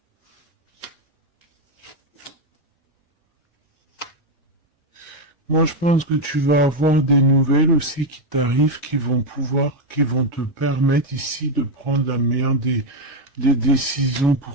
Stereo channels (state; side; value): normal; both; correlation 0.05